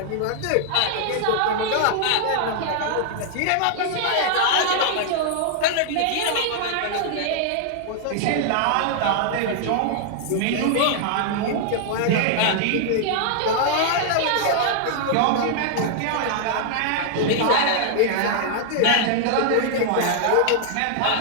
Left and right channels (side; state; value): both; different; correlation 0.00